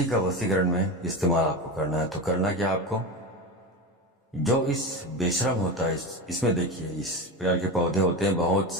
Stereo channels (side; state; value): both; normal; correlation 0.23